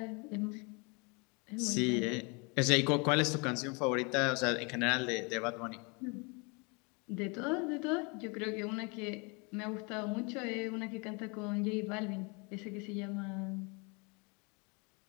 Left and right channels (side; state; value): right; quieter; 31.4 dB